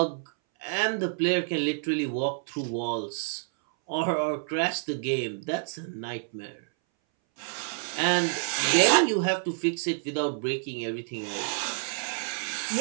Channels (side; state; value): left; silent; 59 dB below the other